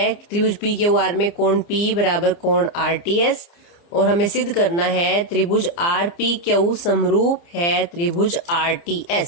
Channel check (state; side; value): late; right; 29 ms